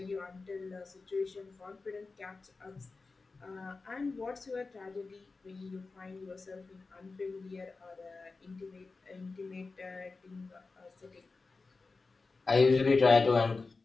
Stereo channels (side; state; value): right; quieter; 3.9 dB